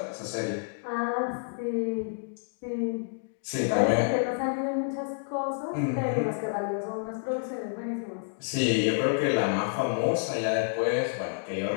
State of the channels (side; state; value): right; silent; digital silence